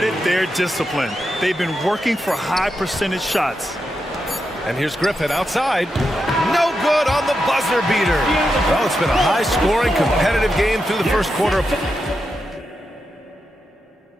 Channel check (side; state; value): both; normal; correlation 0.86